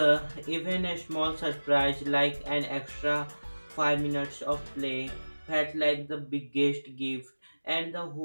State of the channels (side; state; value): both; inverted; correlation -1.00